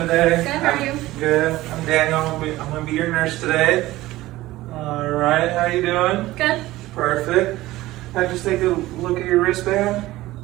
Good, how are you? Good. I'm Daniel. I'm gonna be your nurse today. Alright, how you doing? Good. Perfect. Can I just take a look at your wristband?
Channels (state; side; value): quieter; left; 17.2 dB